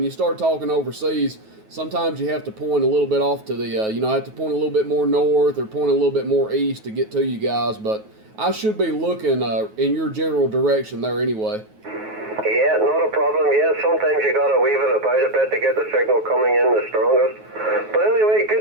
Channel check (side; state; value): left; late; 9.3 ms